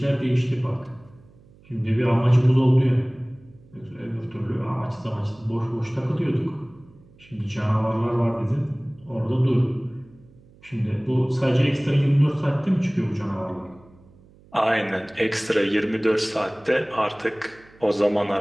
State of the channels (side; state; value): right; noise; hum, 27 dB below the sound